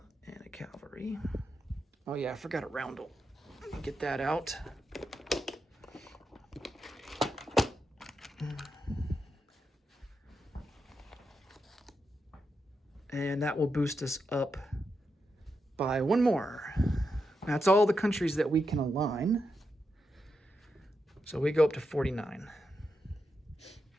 and a cavalry. Oh yeah, I forgot a roundel. Let me get that out. And that will boost us up by 1 more. That's all the countries that we can align. So we go up to 49.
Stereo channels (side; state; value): both; normal; correlation 0.86